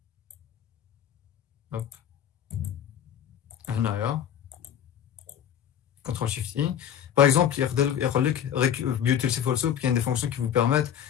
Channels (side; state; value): right; quieter; 9.5 dB